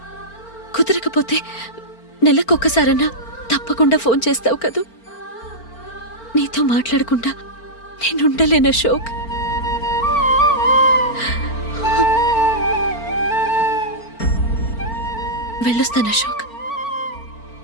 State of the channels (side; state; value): right; late; 4.4 ms